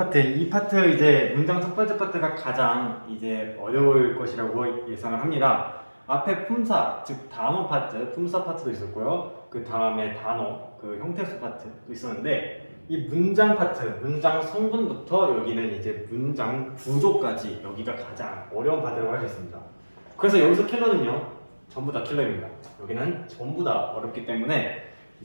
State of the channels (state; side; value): inverted; both; correlation -1.00